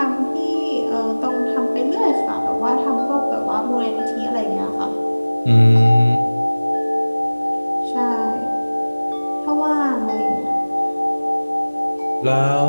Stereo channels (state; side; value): inverted; both; correlation -1.00